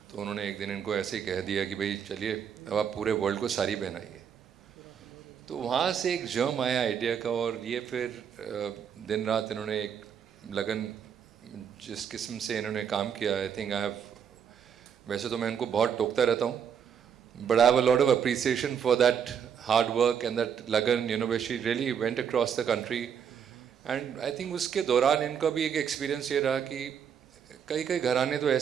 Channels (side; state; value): left; quieter; 7.9 dB